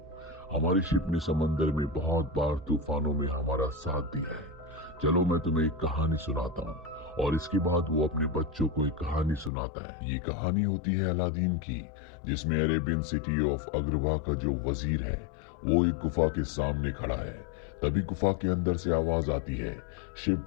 हमारी शिप ने समंदर में बहुत बार तूफानों में हमारा साथ दिया है। चलो मैं तुम्हें एक कहानी सुनाता हूँ। और इसके बाद वो अपने बच्चों को एक कहानी सुनाता है। ये कहानी होती है अलादीन की, जिसमें अरेबियन सिटी ऑफ अग्रवा का जो वजीर है वो एक गुफा के सामने खड़ा है। तभी गुफा के अंदर से आवाज आती है,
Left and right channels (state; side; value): drops out; right; at 9.5 s